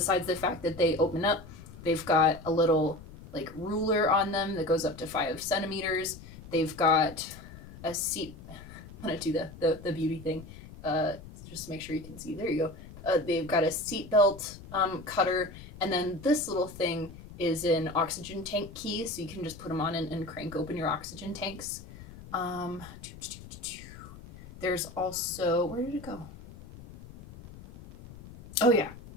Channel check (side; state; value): left; noise; rumble, 16 dB below the sound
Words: the fact that they open up, they've got a little like ruler on them that goes up to 5 centimeters. They've got a seat. I'm gonna do the beauty thing. Just make sure you can see. There you go. They've got a seat belt cutter, and then this little thing is an oxygen tank key, so you can just put them on and crank open your oxygen tanks. There's also, where did it go? Oh yeah,